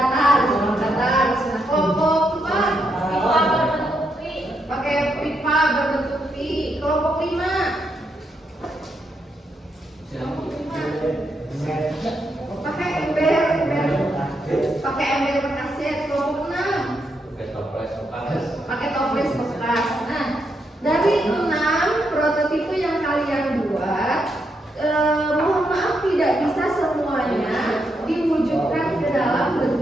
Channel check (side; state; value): both; normal; correlation 0.80